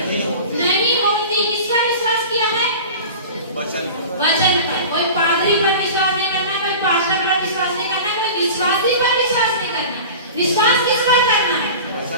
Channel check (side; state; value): both; inverted; correlation -0.35